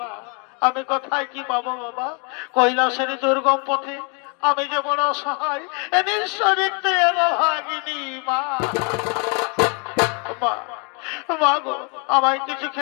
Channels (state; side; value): quieter; right; 35.7 dB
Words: আমি কোথায় কি পাবো বাবা? কৈলাসের দুর্গম পথে আমি যে বড় অসহায়, এ নিঃস্বরিক্ত ভাগিনী মা। মা গো আমায় কিছু